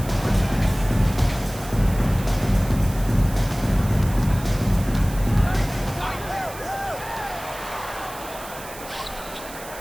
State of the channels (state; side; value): noise; right; hiss, 15 dB below the sound